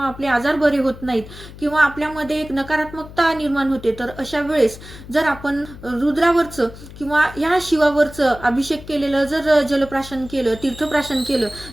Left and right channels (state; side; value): noise; left; hum, 16 dB below the sound